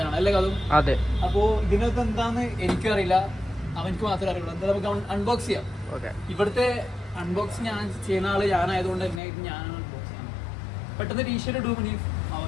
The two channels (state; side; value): drops out; right; at 9.2 s